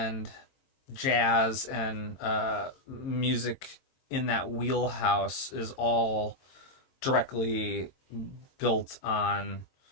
jazz and music in that wheelhouse is all directly built on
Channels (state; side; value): late; right; 22 ms